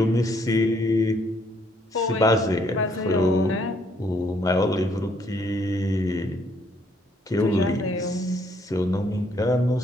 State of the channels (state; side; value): normal; both; correlation 0.68